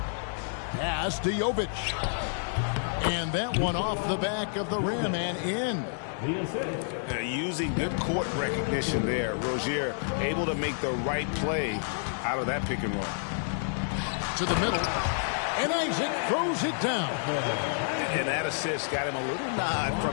Pass to Jovic. And that one off the back of the rim and in. Using good court recognition there. Rozier able to make the right play out of that pick and roll. To the middle. And Isaac throws it down. And that assist got him a little nod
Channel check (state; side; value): silent; right; digital silence